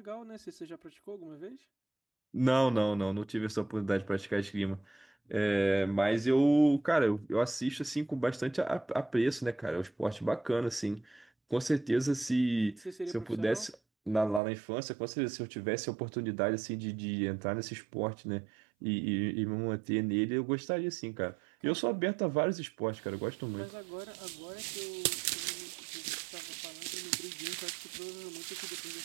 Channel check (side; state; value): left; drops out; at 14.4 s